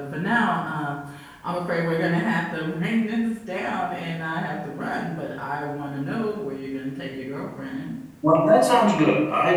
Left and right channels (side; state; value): both; identical; correlation 1.00